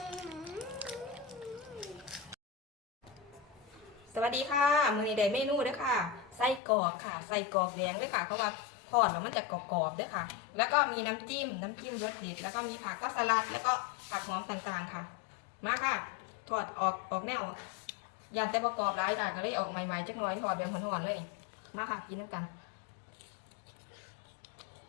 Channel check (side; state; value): right; drops out; at 6.6 s